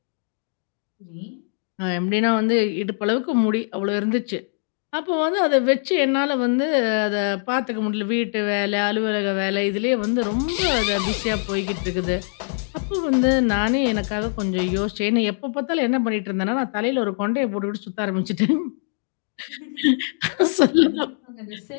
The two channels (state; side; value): silent; right; digital silence